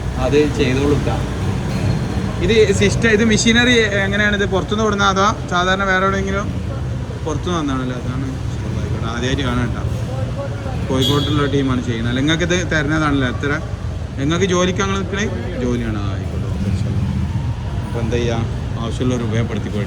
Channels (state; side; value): identical; both; correlation 1.00